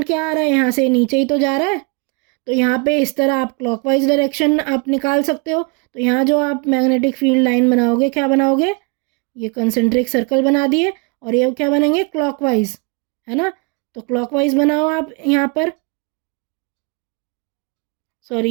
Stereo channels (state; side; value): quieter; left; 33.1 dB